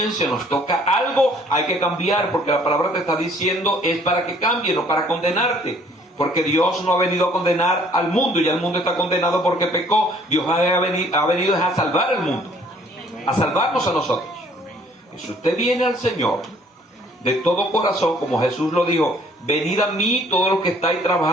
nos toca algo, hay que cambiar, porque la palabra te está diciendo es para que cambie, no para condenarte. Porque Dios no ha venido a condenar al mundo, ya el mundo está condenado porque pecó. Dios ha venido a salvar al mundo, a salvarnos a nosotros. Y si usted viene al Señor de todo corazón, como Jesús lo dijo: venid a mí todos los que estáis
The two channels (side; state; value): both; normal; correlation 0.59